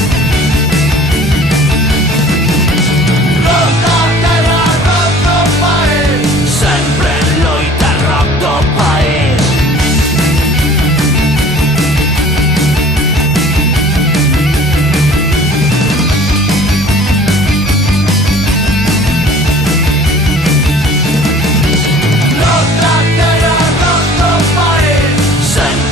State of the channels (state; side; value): normal; both; correlation 0.49